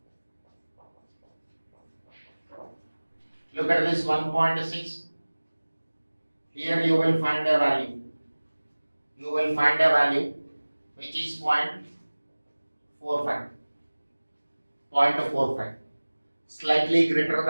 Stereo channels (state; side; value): inverted; both; correlation -1.00